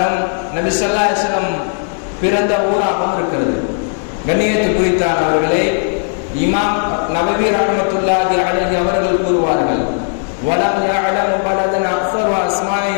நபி ஸல்லல்லாஹு அலைஹி வஸல்லம் பிறந்த ஊராகவும் இருக்கிறது. கண்ணியத்து குறித்தானவர்களே, இமாம் நபவி ரஹ்மத்துல்லாஹி அலைஹி அவர்கள் கூறுவார்கள், வலம் யஅலமு பலதன் அக்ஸரு அஸ்மாஇ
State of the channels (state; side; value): silent; right; 66 dB below the other